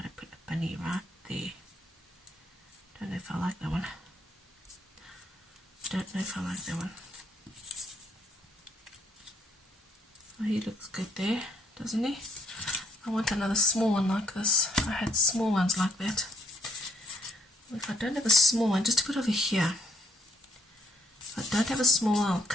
I put a bunny right there? Don't know if I like that one. Oh, he looks good there, doesn't he? I want another small one like this. I had small ones like that. If I don't have a small one, just to put over here. If I don't have a small one, I'll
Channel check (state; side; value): normal; both; correlation 0.68